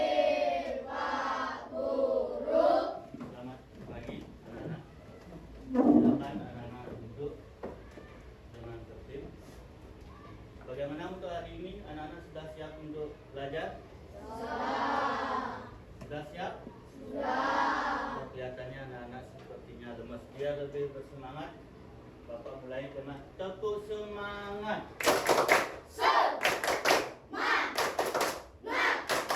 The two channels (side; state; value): both; identical; correlation 1.00